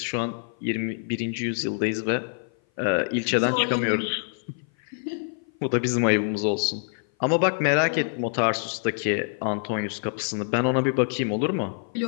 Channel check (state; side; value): silent; right; 57 dB below the other